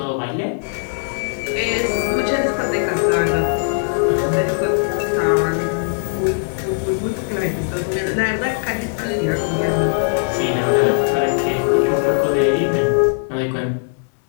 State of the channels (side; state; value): right; silent; 66 dB below the other